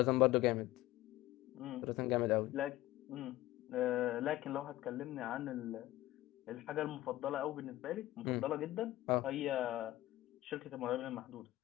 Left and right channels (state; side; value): quieter; right; 16.3 dB